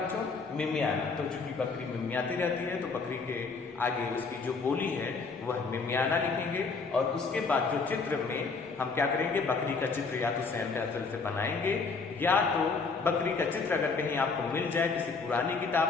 मिमियाना। तो चूंकि बकरी मिमियाती रहती है तो बकरी के आगे उसकी जो बोली है वह मिमियाना लिखेंगे। और उसके बाद जो चित्र में हम क्या करेंगे, बकरी का चित्र या तो स्वयं पेंसिल से बनाएंगे, या तो बकरी का चित्र अगर कहीं आपको मिल जाए किसी पुरानी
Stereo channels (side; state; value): right; quieter; 4.5 dB